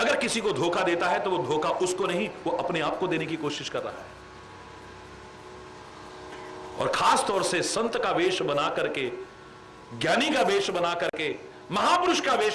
किसी को धोखा देता है तो वो धोखा उसको नहीं, वो अपने आप को देने की कोशिश कर रहा है। और खास तौर से संत का वेश बना करके, ज्ञानी का वेश बना करके, महापुरुष का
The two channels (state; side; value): identical; both; correlation 1.00